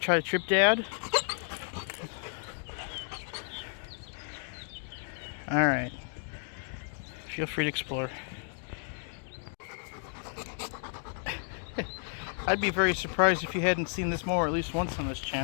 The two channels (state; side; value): silent; right; 56 dB below the other